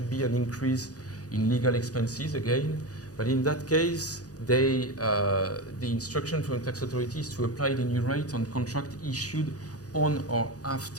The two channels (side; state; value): right; late; 0.67 ms